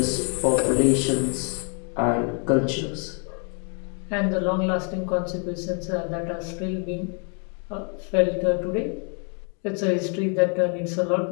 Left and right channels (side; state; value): right; quieter; 40.0 dB